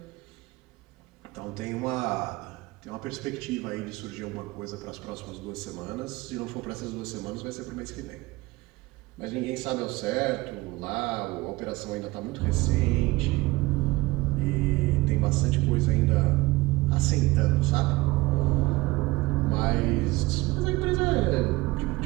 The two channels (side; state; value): left; quieter; 21.1 dB